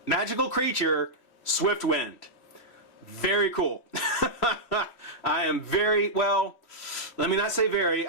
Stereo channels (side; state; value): right; late; 3.1 ms